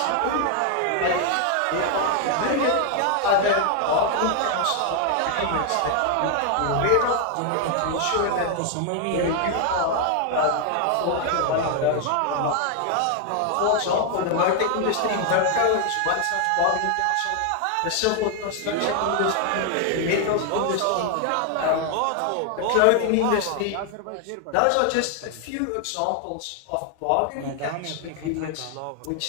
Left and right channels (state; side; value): different; both; correlation 0.00